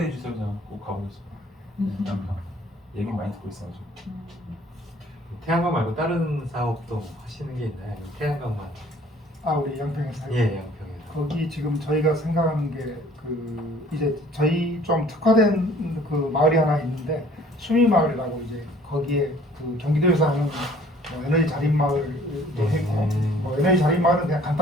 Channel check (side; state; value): both; normal; correlation 0.55